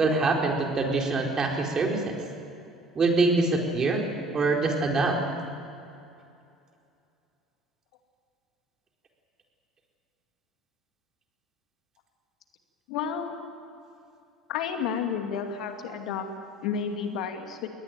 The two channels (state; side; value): normal; both; correlation 0.53